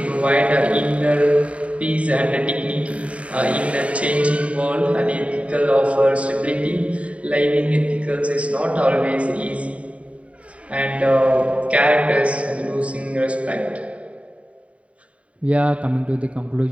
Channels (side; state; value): left; late; 0.064 ms